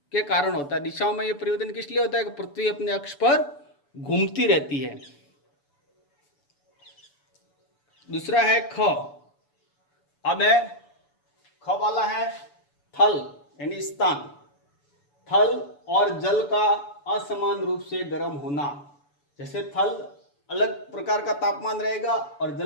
के कारण होता है। दिशाओं में ये परिवर्तन किस लिए होता है कि पृथ्वी अपने अक्ष पर घूमती रहती है। दूसरा है ख। अब है ख वाला है थल यानी स्थान। थल और जल का असमान रूप से गर्म होना। जैसे थल अलग प्रकार का तापमान रहेगा और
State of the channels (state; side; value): late; right; 6.9 ms